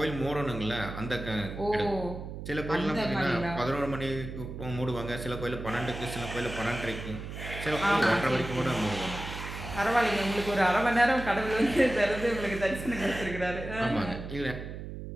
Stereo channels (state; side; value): noise; right; hum, 9 dB below the sound